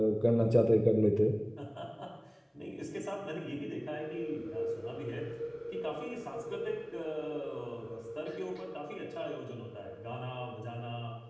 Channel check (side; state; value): both; identical; correlation 1.00